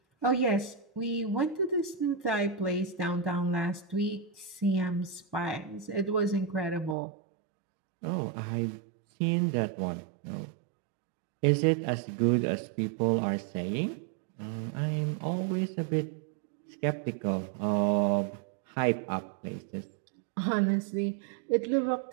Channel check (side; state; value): left; drops out; at 7.0 s